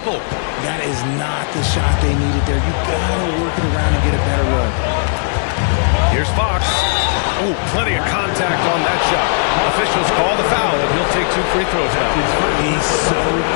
That is not the shot they needed there. You gotta work it around and get a better look. Here's Fox. Oh, plenty of contact on that shot. Officials call the foul, and he'll take 2 free throws now. He's so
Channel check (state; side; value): silent; right; digital silence